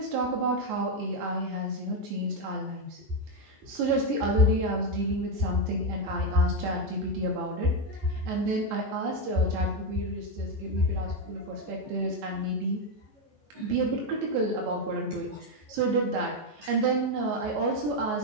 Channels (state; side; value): late; left; 14 ms